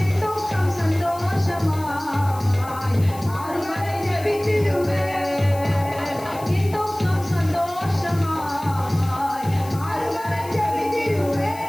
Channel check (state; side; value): noise; left; hiss, 18 dB below the sound